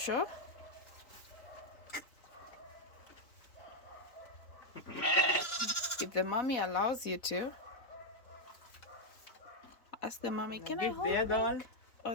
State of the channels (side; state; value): right; late; 4.2 ms